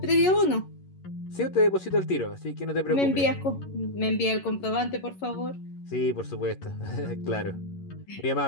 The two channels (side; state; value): right; late; 11 ms